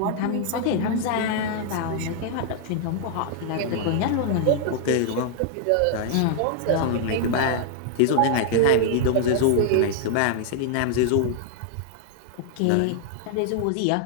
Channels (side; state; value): both; different; correlation 0.00